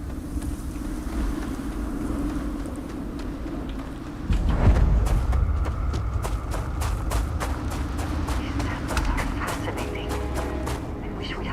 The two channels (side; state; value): both; identical; correlation 1.00